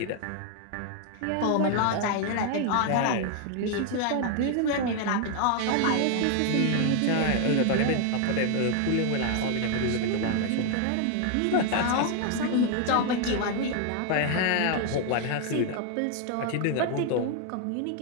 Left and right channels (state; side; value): different; both; correlation 0.00